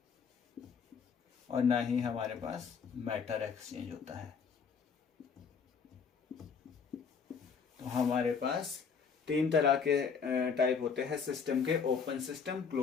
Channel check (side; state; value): right; quieter; 6.2 dB